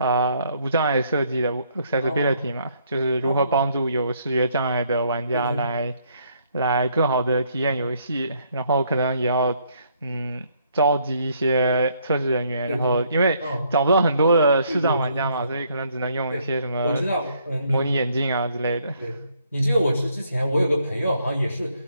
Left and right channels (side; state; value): both; inverted; correlation -0.68